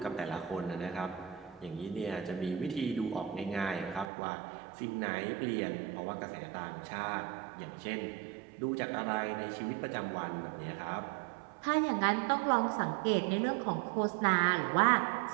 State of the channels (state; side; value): drops out; left; at 4.0 s